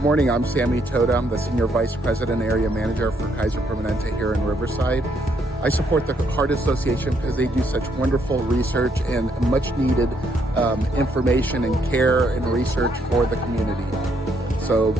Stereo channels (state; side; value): normal; both; correlation 0.72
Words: morning, I'm Sammy Toda. I'm the Senior Vice President Area Manager for Kaiser Permanente here in Riverside. I support the Heart Association because they do such wonderful research and much needed information and care and research for the community. So